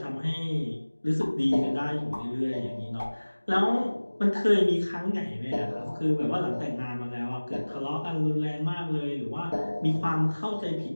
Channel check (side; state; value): both; inverted; correlation -1.00